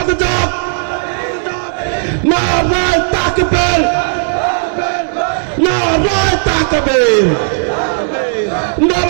যাক। নারায়ে তাকবীর, নারায়ে তাকবীর,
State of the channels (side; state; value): left; silent; digital silence